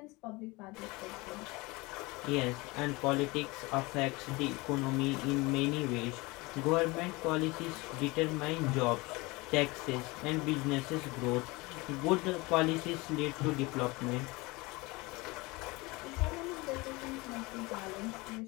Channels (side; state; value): right; quieter; 23.8 dB